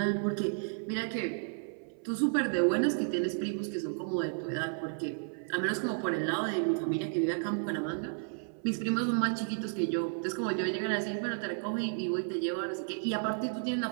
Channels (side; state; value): left; silent; 56 dB below the other